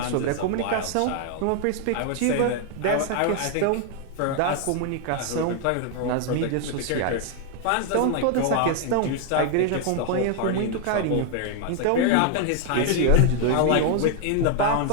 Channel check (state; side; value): different; both; correlation 0.00